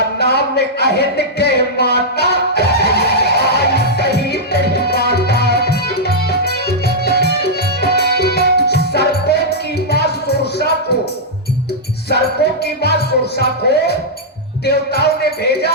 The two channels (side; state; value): both; normal; correlation -0.08